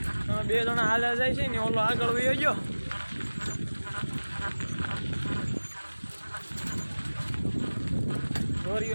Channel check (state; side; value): inverted; both; correlation -1.00